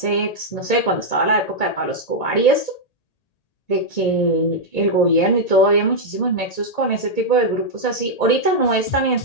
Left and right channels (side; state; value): right; late; 1.8 ms